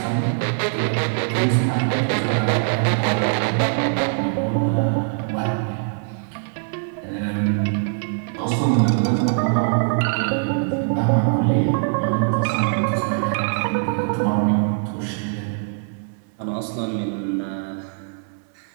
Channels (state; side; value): silent; left; digital silence